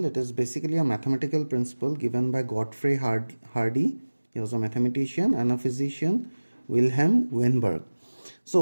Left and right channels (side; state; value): both; inverted; correlation -1.00